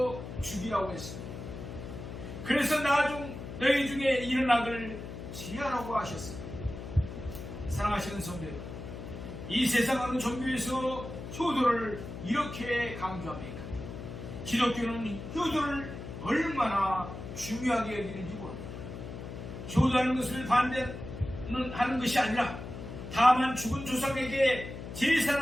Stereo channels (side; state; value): left; noise; hum, 9 dB below the sound